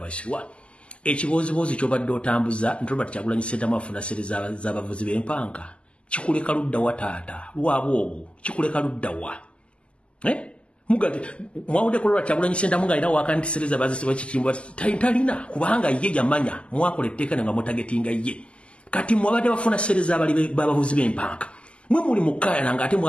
ekibooziboozi kyobadde otambuza nti Robert Kyagulanyi Ssentamu afuna sente z'abavuzi b'empanka kikuleka luddawa taata Lwabwogo kikuleka luddawa mugati mwawudde ku Robert Kyagulanyi Ssentamu ng'alina wakanti sente zabazisibwa kikimbwa talina kubanga ye yamanya mwakola etteeka nga mutagetinga ye kati mwabadde bafuna sente z'abavuzi b'empanka mwe muli mukaya nga ate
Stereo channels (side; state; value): right; late; 0.054 ms